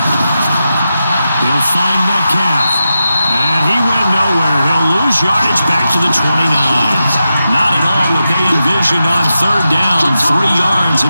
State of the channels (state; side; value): inverted; both; correlation -0.89